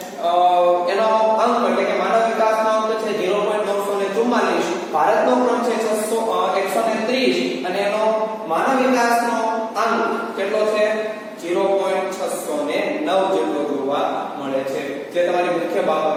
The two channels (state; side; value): identical; both; correlation 1.00